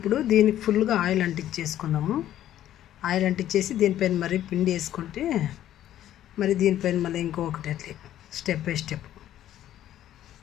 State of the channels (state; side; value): quieter; right; 12.2 dB